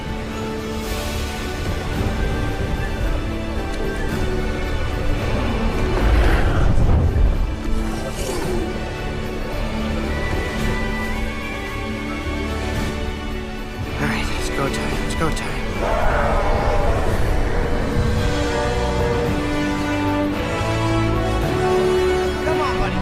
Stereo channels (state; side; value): identical; both; correlation 1.00